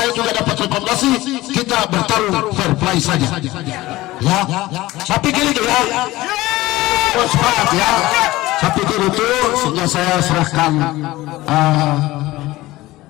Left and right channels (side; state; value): right; quieter; 18.2 dB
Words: juga dapat rekomendasi, kita bertarung fair play saja. Ya, saya pikir itu ya. Sepakat ya. Saya pikir itu, sehingga saya serahkan